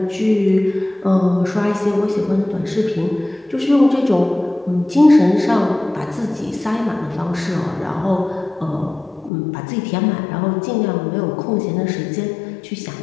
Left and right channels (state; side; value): drops out; right; at 9.3 s